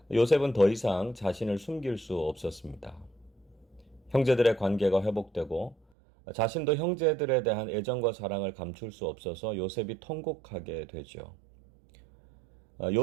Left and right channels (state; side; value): drops out; left; at 5.8 s